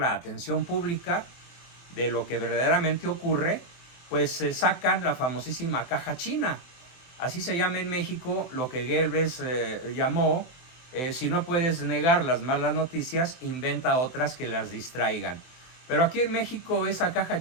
atención pública de lo que verdaderamente ocurre, pues se sacan la famosísima caja china. Así se llama en México lo que Goebbels llamó, si no puedes negar las malas noticias, inventa otras que las distraigan. Pero aquí en México esa caja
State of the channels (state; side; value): late; right; 23 ms